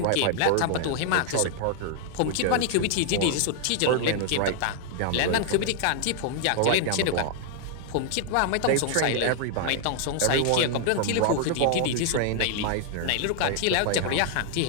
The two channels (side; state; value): both; different; correlation 0.00